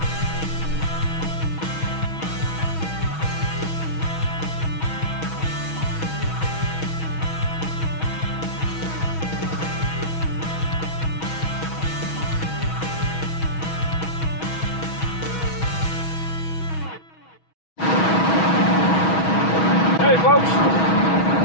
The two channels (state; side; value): late; right; 6.2 ms